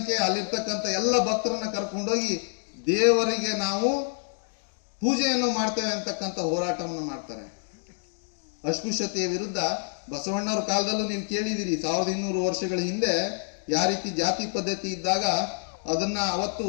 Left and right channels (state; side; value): silent; right; 60 dB below the other